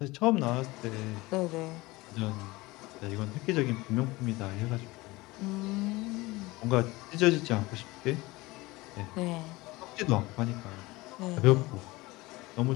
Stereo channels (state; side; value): quieter; right; 21.3 dB